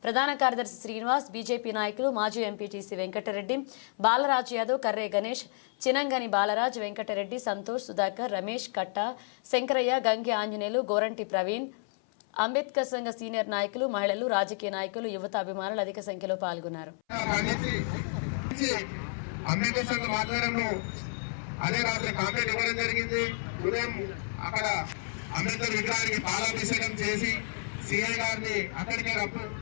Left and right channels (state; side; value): silent; right; 57 dB below the other